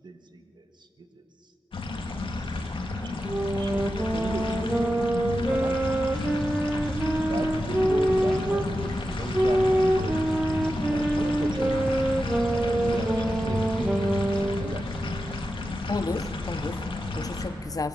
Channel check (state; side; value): normal; both; correlation 0.90